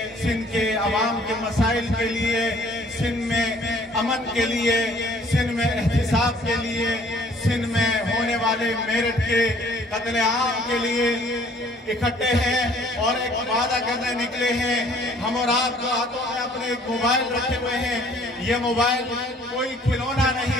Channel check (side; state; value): both; normal; correlation 0.57